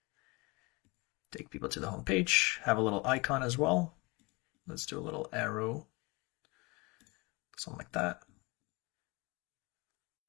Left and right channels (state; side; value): quieter; right; 26.3 dB